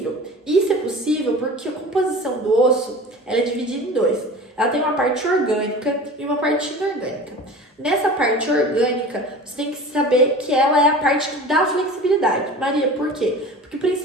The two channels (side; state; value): both; normal; correlation 0.37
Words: Isso é possível porque a composição do osso ela é dividida em dois. Ela tem uma parte orgânica e uma parte inorgânica. Nessa parte orgânica, você tem que saber que ela é a parte que dá flexibilidade. Maria, por quê? Porque o